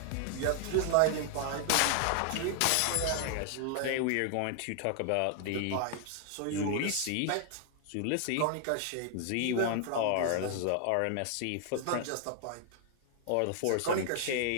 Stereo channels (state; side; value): different; both; correlation 0.00